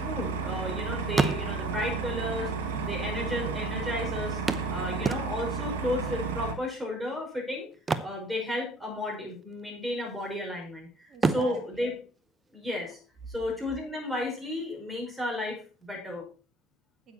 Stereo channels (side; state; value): both; normal; correlation 0.52